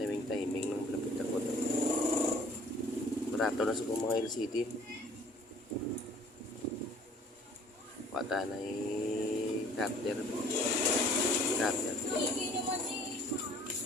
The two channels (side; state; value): both; normal; correlation 0.54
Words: timing ng lapit ako. Barato na sa mga LCD. Wata na cutter.